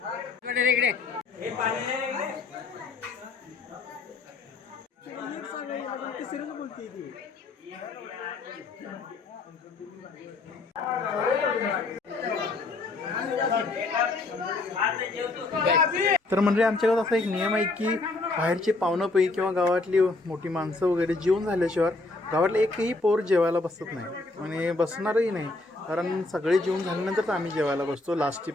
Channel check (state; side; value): quieter; right; 3.3 dB